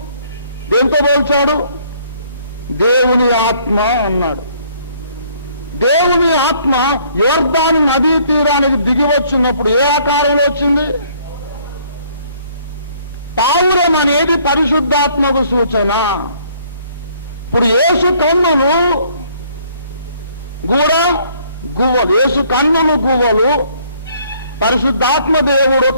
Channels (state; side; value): inverted; both; correlation -0.62